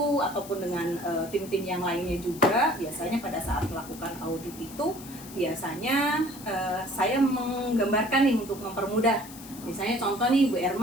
ataupun dengan tim-tim yang lainnya juga, biasanya pada saat melakukan audit itu biasanya saya menggambarkan nih untuk mempermudah. Misalnya contoh nih Bu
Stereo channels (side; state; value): left; noise; hiss, 16 dB below the sound